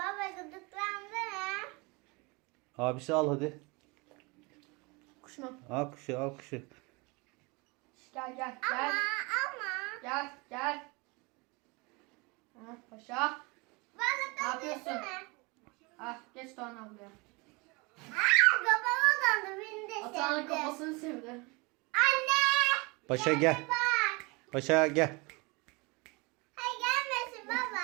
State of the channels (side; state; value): left; quieter; 27.2 dB